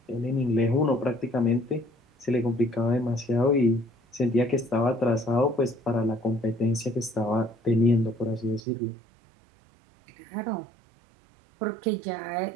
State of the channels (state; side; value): drops out; left; at 8.6 s